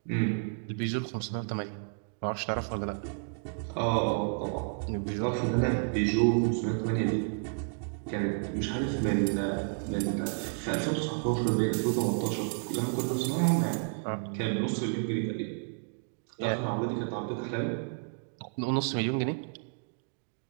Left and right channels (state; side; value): silent; left; 57 dB below the other